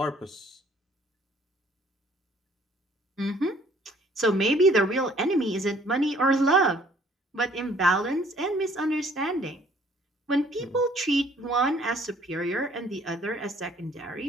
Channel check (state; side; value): normal; both; correlation 0.59